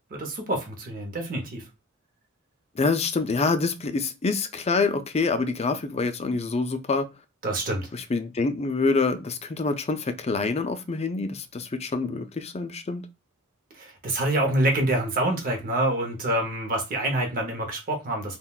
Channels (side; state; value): both; normal; correlation 0.37